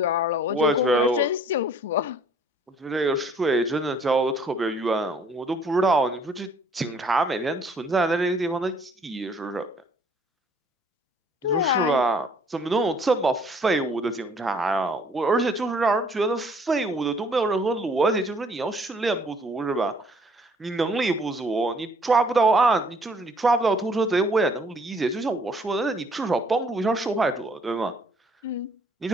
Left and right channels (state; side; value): normal; both; correlation 0.59